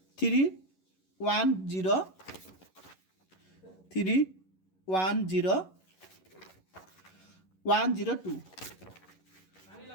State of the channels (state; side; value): late; right; 11 ms